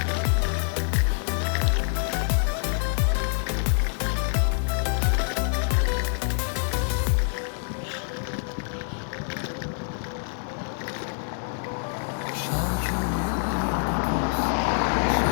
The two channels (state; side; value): silent; right; digital silence